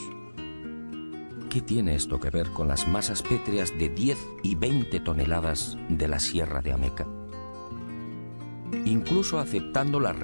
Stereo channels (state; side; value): inverted; both; correlation -1.00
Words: ¿Qué tiene esto que ver con las masas pétreas de 10 y 20 toneladas de la Sierra de Ameca? Incluso aceptando la